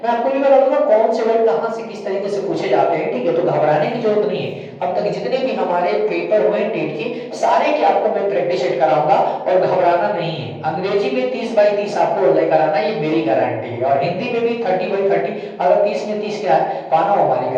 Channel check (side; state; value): both; identical; correlation 1.00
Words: मैं आपको भी बता दूंगा कौन से वर्ड कहां से किस तरीके से पूछे जाते हैं, ठीक है। तो घबराने की जरूरत नहीं है। अब तक जितने भी हमारे पेपर हुए टेट के सारे के आपको मैं प्रैक्टिस सेट कराऊंगा, और घबराना नहीं है। अंग्रेजी में 30/30 आपको लेकर आना, ये मेरी गारंटी है। और हिंदी में भी 30/30, अगर 30 में 30 क्या है पाना, हमारी